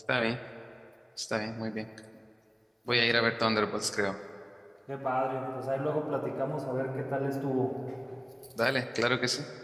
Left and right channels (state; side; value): identical; both; correlation 1.00